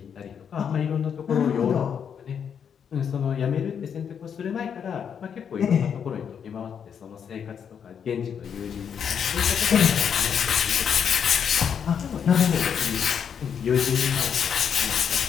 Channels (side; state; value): right; quieter; 7.6 dB